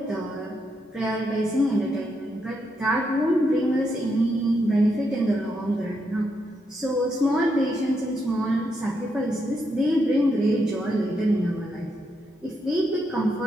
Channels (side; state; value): both; normal; correlation 0.80